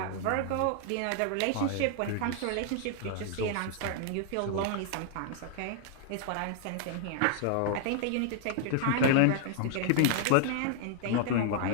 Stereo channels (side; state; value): both; different; correlation 0.00